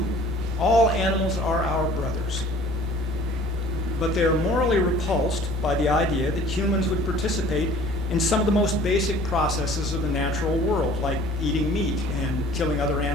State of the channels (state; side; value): normal; both; correlation 0.50